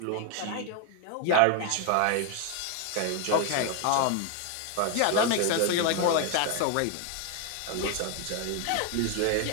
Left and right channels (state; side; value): different; both; correlation 0.01